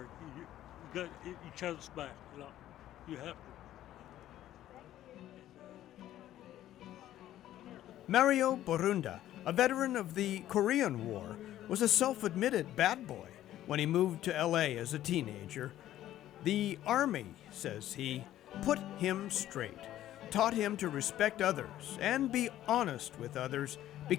You got each other's back. You have to. Mario Borunda, a veteran of the Korean War, was a self-admitted bad boy when he moved to LA as a teenager. The Army, says he, put him straight, taught him to respect others and be honest with others,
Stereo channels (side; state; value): right; quieter; 13.0 dB